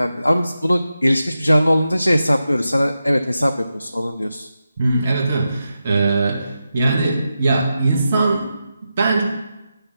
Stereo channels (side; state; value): both; inverted; correlation -0.89